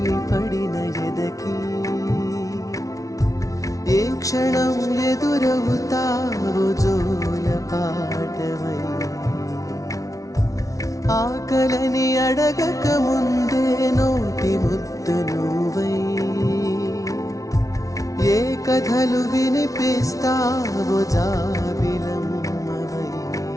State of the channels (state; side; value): late; right; 0.17 ms